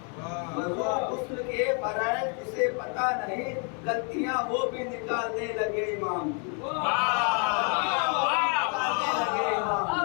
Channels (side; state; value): right; quieter; 38.7 dB